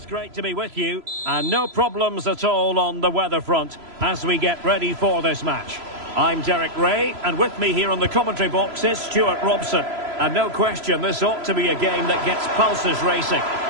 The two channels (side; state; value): left; late; 3.0 ms